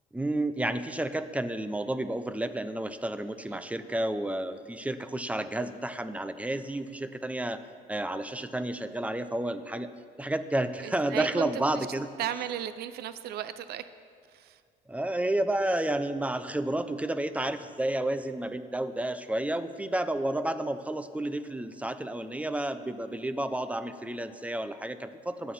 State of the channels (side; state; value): both; normal; correlation 0.85